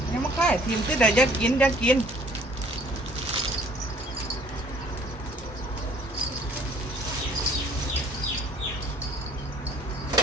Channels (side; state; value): both; normal; correlation 0.57